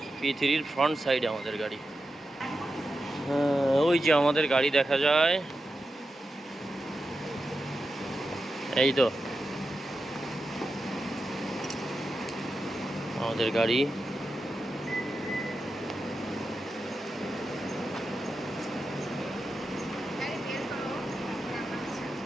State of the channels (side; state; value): both; normal; correlation 0.90